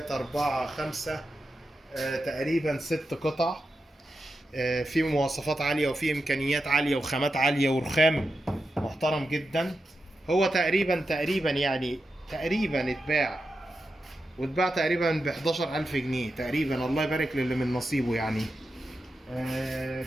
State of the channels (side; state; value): both; normal; correlation 0.89